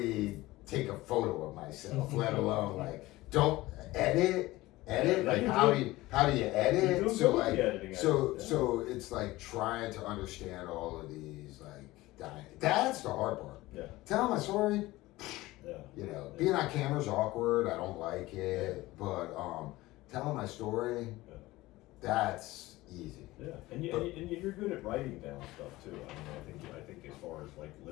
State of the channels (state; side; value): quieter; right; 18.6 dB